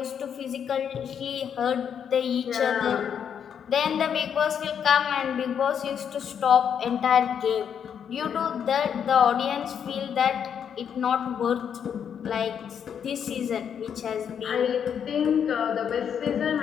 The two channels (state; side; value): quieter; right; 8.0 dB